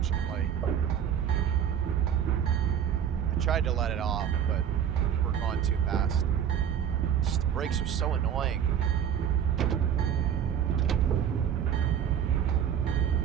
I tried to let it off, but we're going too fast. Just the brakes are so annoying.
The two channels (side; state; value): left; quieter; 8.9 dB